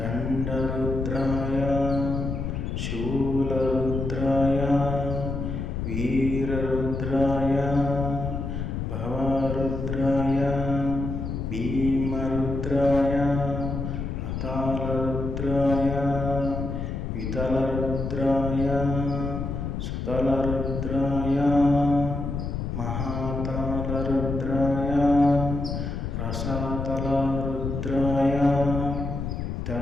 शूलरुद्राय वीररुद्राय भवरुद्राय भीमरुद्राय अतालरुद्राय वितलरुद्राय तलरुद्राय महातालरुद्राय रसातलरुद्राय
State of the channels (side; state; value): left; noise; rumble, 4 dB below the sound